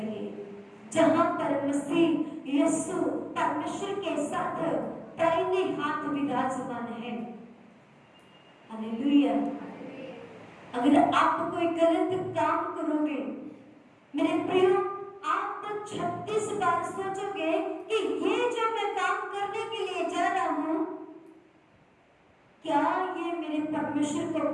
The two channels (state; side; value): identical; both; correlation 1.00